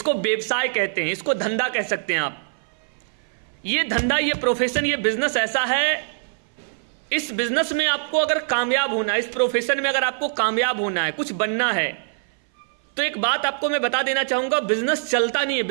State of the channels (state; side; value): silent; left; 59 dB below the other